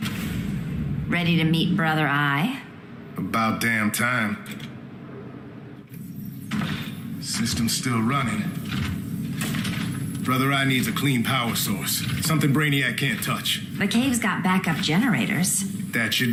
Ready to meet Brother Eye? About damn time. System's still running. Brother Eye needs a clean power source. Something Brainiac can't touch. The cave's got backup generators. That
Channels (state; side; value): identical; both; correlation 1.00